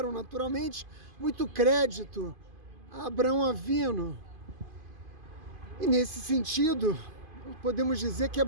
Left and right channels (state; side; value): late; left; 2.5 ms